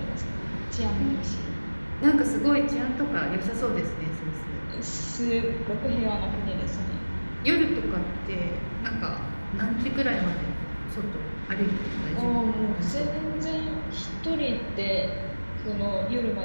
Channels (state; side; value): inverted; both; correlation -1.00